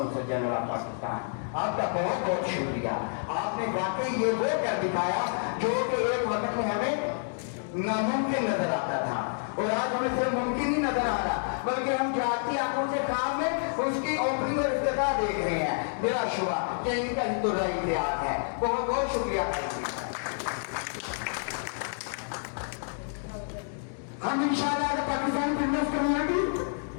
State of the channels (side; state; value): right; silent; digital silence